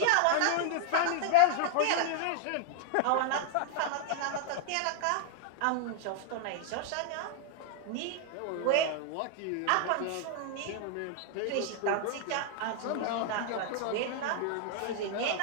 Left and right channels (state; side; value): different; both; correlation 0.00